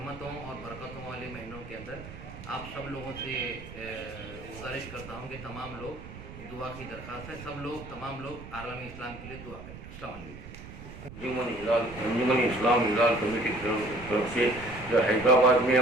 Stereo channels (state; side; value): noise; right; rumble, 14 dB below the sound